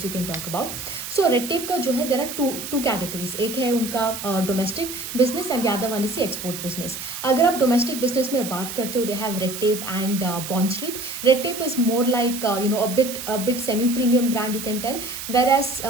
you can talk about. So Red Tape का जो है there are two categories. एक है उनका domestic business and the other one is the export business. अगर आप domestic business में बात करते हो, they have Red Tape and Bond Street. Red Tape is more like a bit semi-premium brand you can tell,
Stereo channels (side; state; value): right; noise; hiss, 8 dB below the sound